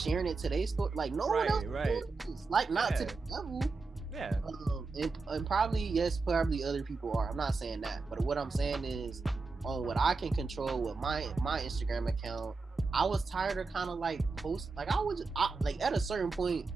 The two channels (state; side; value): quieter; left; 4.0 dB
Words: it to their story, like no one else is, like, not to the level. Yeah. And probably other people are. I'm not saying that, but what I'm saying is, on what I can control with my Instagram account, I was tired of kind of like post, like like at a certain point,